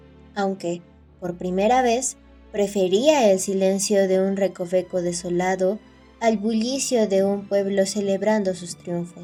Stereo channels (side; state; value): both; identical; correlation 1.00